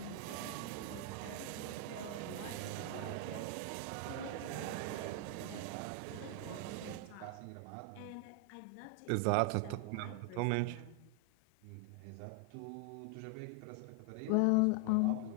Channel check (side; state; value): both; different; correlation 0.01